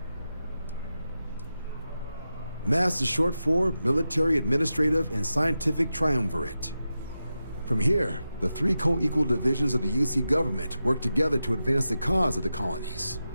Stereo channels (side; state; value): both; inverted; correlation -0.91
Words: MAST is short for Military, Administrative, and Scientific Triumvirate. From here, the three co-equal divisions of the UC government work together to advance the cause of the colonies.